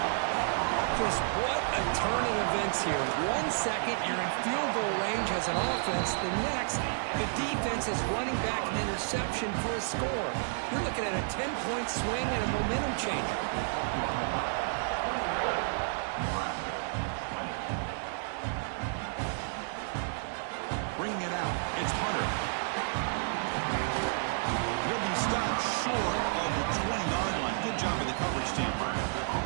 Chris, what a turn of events here. 1 second, you're in field goal range as an offense. The next, the defense is running back an interception for a score. You're looking at a 10-point swing and a momentum changer. Bringing it out, it's Hunter. He'll be stopped short of the 20-yard line. Good job of the coverage team.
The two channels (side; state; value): left; silent; digital silence